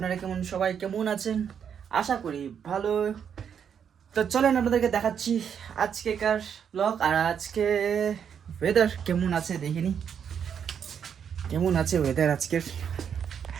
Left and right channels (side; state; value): left; quieter; 7.8 dB